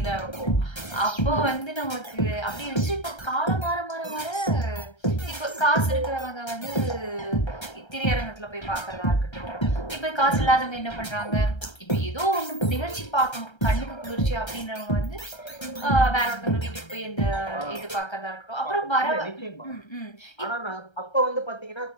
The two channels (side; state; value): right; late; 1.3 ms